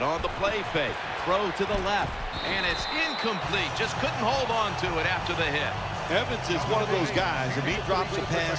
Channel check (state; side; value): identical; both; correlation 1.00